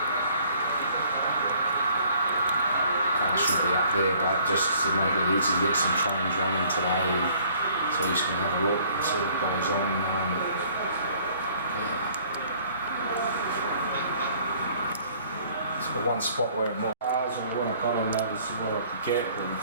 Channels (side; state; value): both; inverted; correlation -0.57